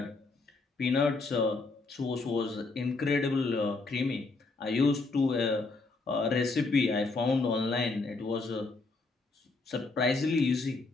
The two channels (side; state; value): right; quieter; 3.7 dB